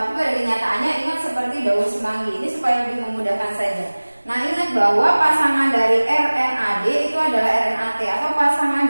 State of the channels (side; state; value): both; inverted; correlation -1.00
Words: pada kenyataannya ingat seperti daun semanggi. Ini supaya lebih memudahkan saja. Nah ingat bahwa pasangan dari RNAD itu adalah RNAT atau pasangan